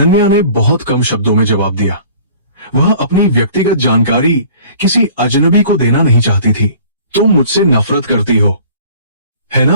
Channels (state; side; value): inverted; both; correlation -0.49